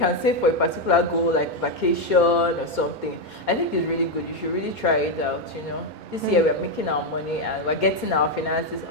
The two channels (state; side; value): late; right; 2.2 ms